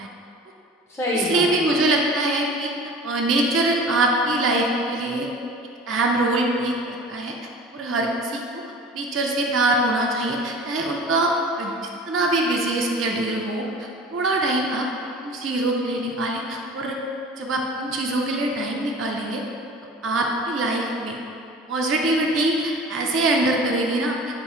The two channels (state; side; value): normal; both; correlation 0.41